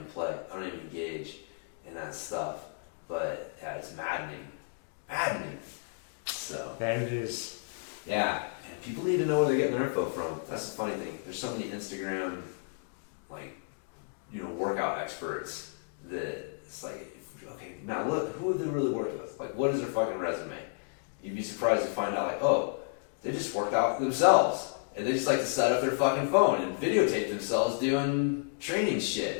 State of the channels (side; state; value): right; silent; digital silence